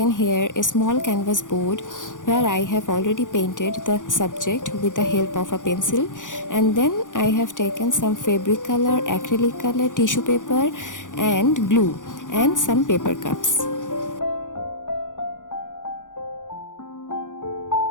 here a small canvas board where I have already painted the subject with the help of a pencil, and then I have taken some fabric color, acrylic color, tissue paper and glue and some paper cups.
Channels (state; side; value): late; right; 0.87 ms